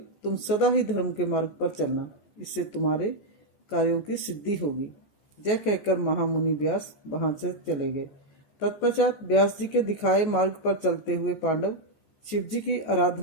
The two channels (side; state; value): right; late; 14 ms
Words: तुम सदा ही धर्म के मार्ग पर चलना, इससे तुम्हारे कार्यों की सिद्धि होगी। यह कहकर महामुनि व्यास वहां से चले गए। तत्पश्चात व्यास जी के दिखाए मार्ग पर चलते हुए पांडव शिव जी की